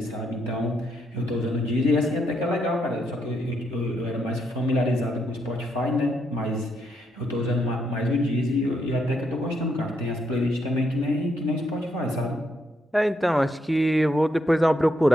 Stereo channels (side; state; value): both; normal; correlation 0.77